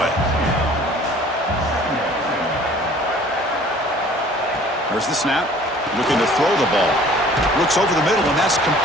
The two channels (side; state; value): both; normal; correlation 0.51